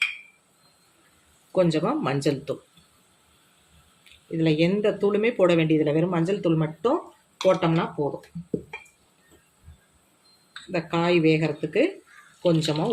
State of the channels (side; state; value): both; identical; correlation 1.00